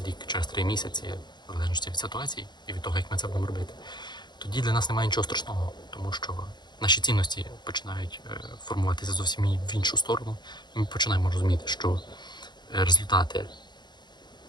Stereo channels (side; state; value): right; late; 0.21 ms